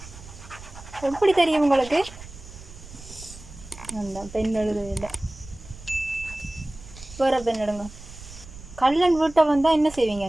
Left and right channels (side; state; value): right; noise; rumble, 16 dB below the sound